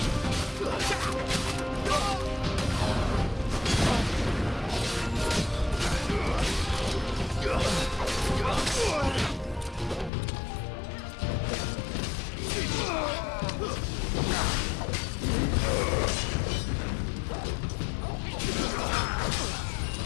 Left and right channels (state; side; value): drops out; right; at 10.1 s